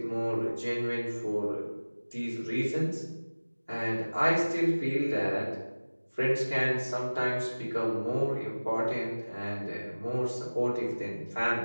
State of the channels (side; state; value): both; inverted; correlation -1.00